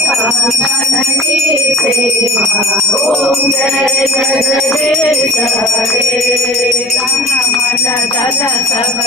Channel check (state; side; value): normal; both; correlation 0.41